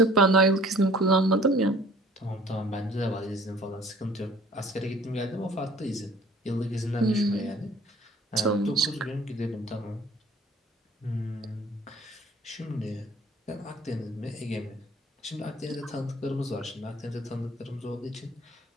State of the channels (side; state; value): both; normal; correlation 0.52